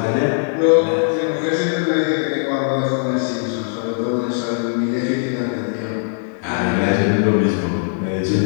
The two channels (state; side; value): silent; right; digital silence